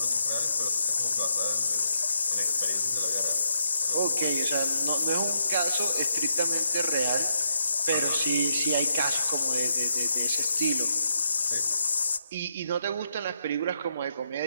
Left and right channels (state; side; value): inverted; both; correlation -0.80